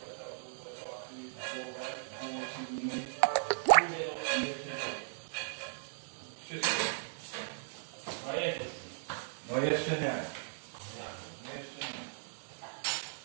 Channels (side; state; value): left; silent; 53 dB below the other